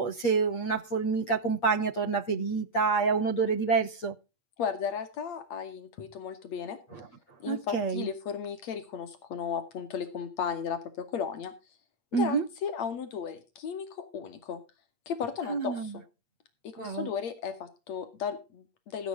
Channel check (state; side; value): late; right; 8.5 ms